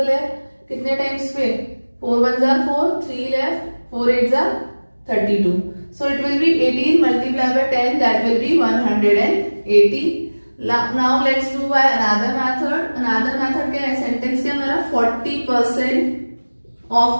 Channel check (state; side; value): inverted; both; correlation -1.00